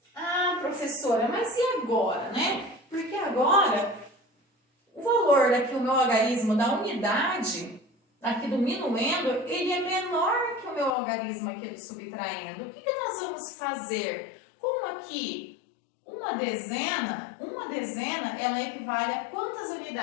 Ah, professora, mas e agora, né? Porque agora, o valor daqui, o meu algarismo da unidade, aqui do minuendo, ele é menor que o meu algarismo aqui do subtraindo. O que nós vamos fazer? Como aqui, uma dezena, ela equivale a quantas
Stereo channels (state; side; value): drops out; right; at 11.0 s